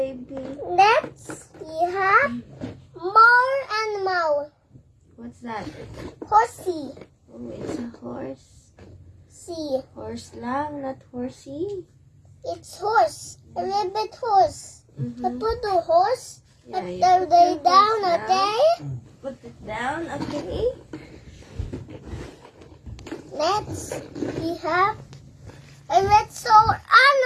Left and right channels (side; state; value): both; identical; correlation 1.00